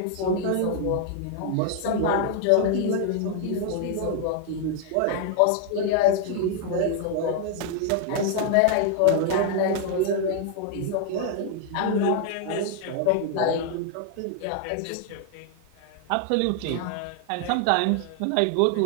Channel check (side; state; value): both; different; correlation 0.00